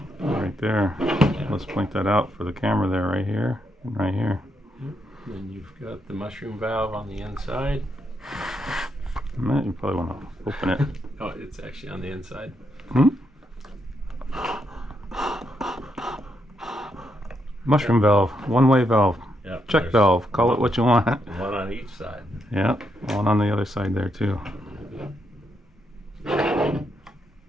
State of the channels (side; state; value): both; normal; correlation 0.79